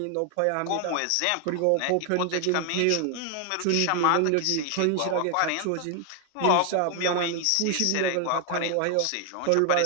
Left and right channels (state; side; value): different; both; correlation 0.00